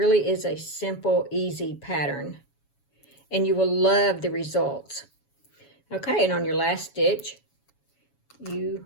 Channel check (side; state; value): right; late; 7.2 ms